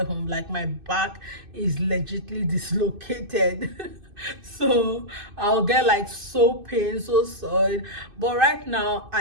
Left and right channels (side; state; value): left; late; 2.6 ms